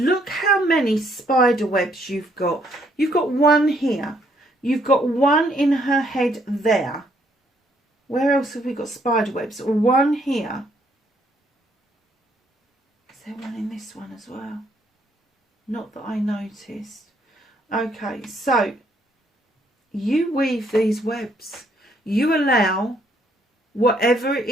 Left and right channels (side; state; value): both; normal; correlation 0.69